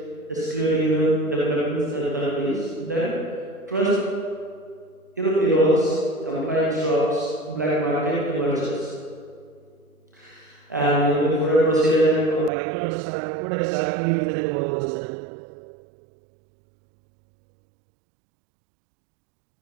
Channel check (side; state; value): left; drops out; at 12.5 s